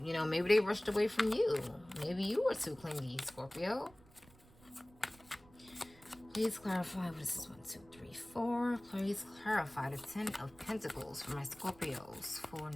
You know, maybe they rushed away from you. Maybe you were too clingy, Scorpio. Please clarify what this is. 1, 2, 3, 4. Please clarify the 10 of Pentacles for my Scorpios for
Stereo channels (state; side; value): noise; right; rumble, 25 dB below the sound